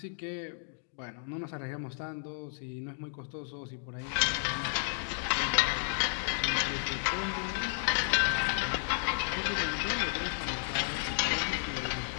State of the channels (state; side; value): silent; right; digital silence